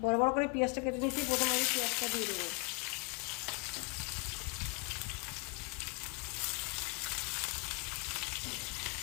বড় বড় করে পেঁয়াজটা কেটে নিয়েছি। প্রথমে আমি পেঁয়াজটা দিয়ে দেবো।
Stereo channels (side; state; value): right; quieter; 30.9 dB